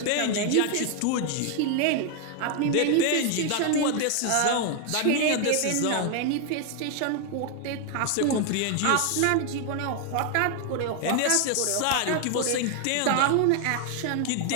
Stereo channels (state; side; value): different; both; correlation 0.00